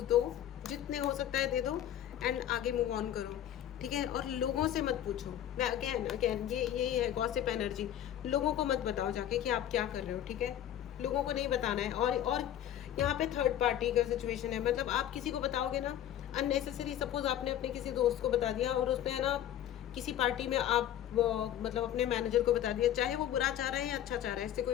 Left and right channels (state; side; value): quieter; right; 11.2 dB